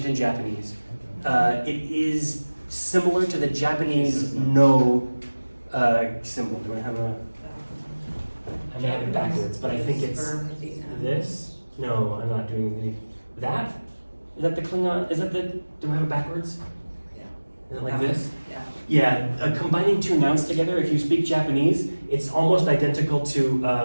in Japanese. It is similar to the Japanese no symbol. Do I have a? I may have it backwards, but I think it's this. No, I'm not doing that. Is that the Klingon? Is that the? Do I have it backwards? Yeah. Is it like this? Yeah. Yeah. Combining two nouns together. If you speak Japanese, it's almost identical to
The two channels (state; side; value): inverted; both; correlation -1.00